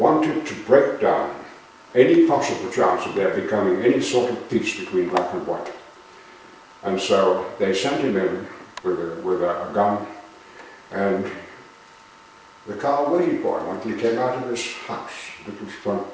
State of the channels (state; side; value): identical; both; correlation 1.00